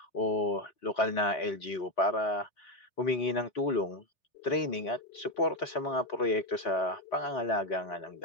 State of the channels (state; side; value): late; right; 3.8 ms